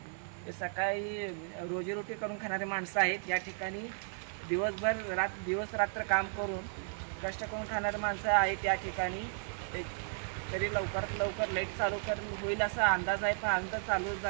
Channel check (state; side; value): silent; left; 55 dB below the other